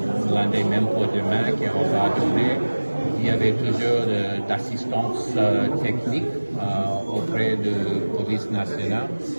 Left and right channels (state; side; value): inverted; both; correlation -1.00